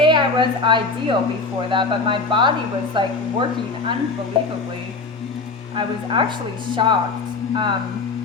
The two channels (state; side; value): quieter; right; 3.9 dB